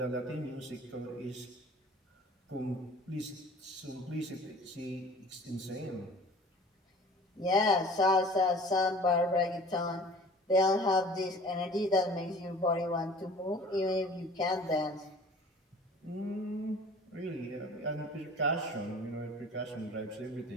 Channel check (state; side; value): normal; both; correlation 0.46